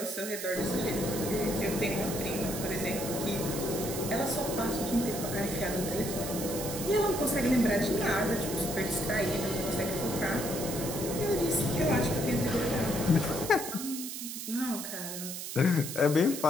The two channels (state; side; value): noise; right; hiss, 7 dB below the sound